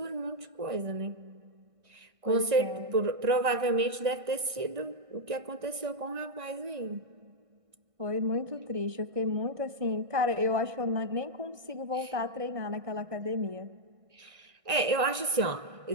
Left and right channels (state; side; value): late; left; 1.6 ms